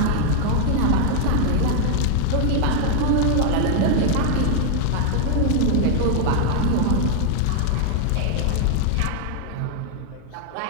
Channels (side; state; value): both; different; correlation 0.00